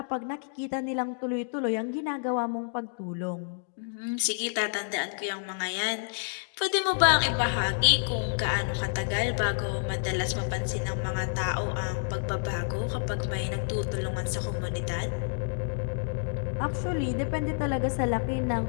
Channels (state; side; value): silent; right; digital silence